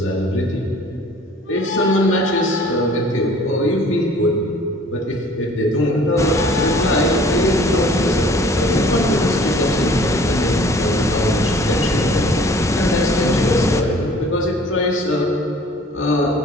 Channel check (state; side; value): normal; both; correlation 0.51